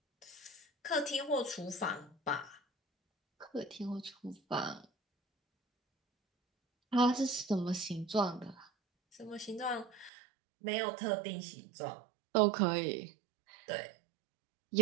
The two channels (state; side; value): drops out; left; at 10.1 s